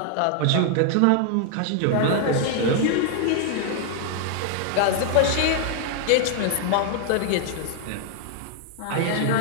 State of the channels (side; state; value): both; different; correlation 0.00